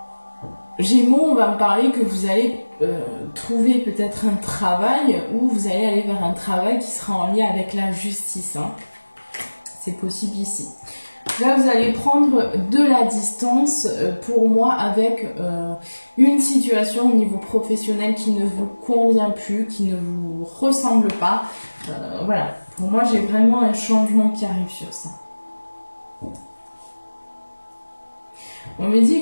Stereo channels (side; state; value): both; inverted; correlation -1.00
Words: Gémeaux, on va me parler que vous allez trouver peut-être un travail ou vous allez aller vers un travail qui sera en lien avec la justice. Hein. C'est possible ici. Là, vous allez prendre de la distance pour moi avec une situation au niveau professionnel qui ne vous convient plus, qui ne vous ressemble pas. Voilà. Pour moi, j'ai vraiment un changement qui arrive sur ça. On me